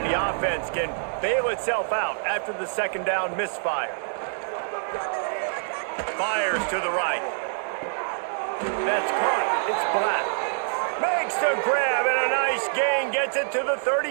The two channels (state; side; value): silent; left; 61 dB below the other